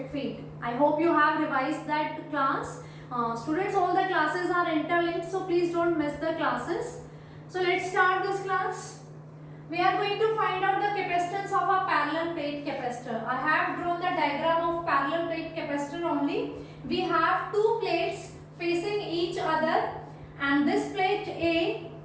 field. I hope you have revised that class. Students, all the classes are interlinked, so please don't miss the classes. So let's start this class. We are going to find out the capacitance of a parallel plate capacitor. I have drawn the diagram of parallel plate capacitor only. We have two plates facing each other, and this plate A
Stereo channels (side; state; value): both; identical; correlation 1.00